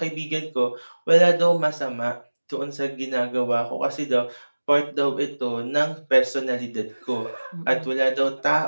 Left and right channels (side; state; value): both; inverted; correlation -1.00